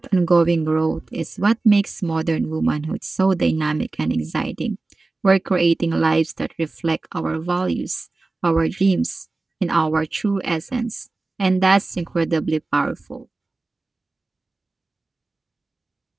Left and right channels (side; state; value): left; quieter; 3.4 dB